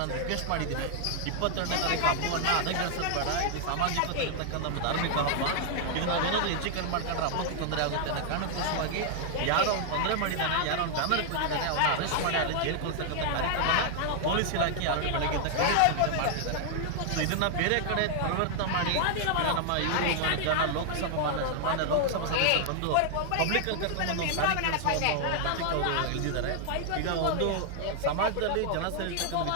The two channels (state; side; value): different; both; correlation 0.00